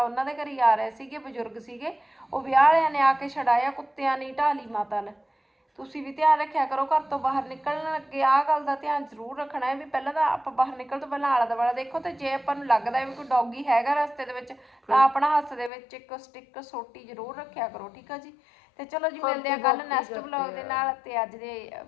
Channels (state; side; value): drops out; right; at 15.7 s